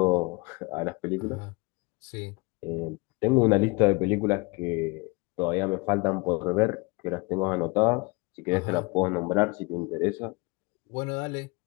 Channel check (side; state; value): right; quieter; 27.6 dB